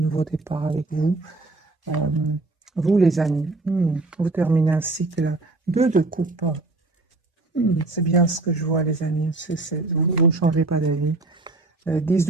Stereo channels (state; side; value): quieter; left; 3.1 dB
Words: départ avec vous. Vous, les amis, vous terminez un cycle 2 de coupe. C'est bien ce que je vois, les amis. Vous ne changez pas d'avis. 10